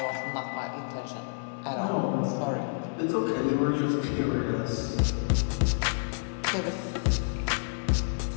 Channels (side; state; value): right; silent; digital silence